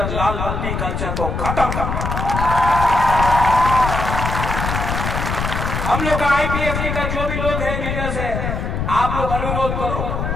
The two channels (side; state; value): left; noise; rumble, 3 dB below the sound